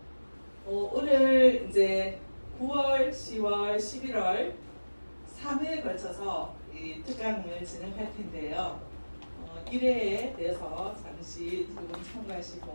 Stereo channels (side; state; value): both; inverted; correlation -1.00